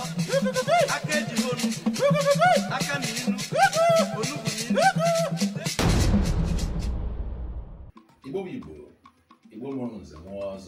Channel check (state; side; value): identical; both; correlation 1.00